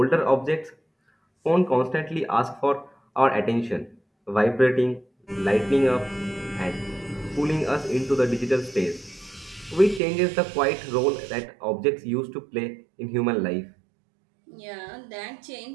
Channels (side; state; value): left; drops out; at 10.0 s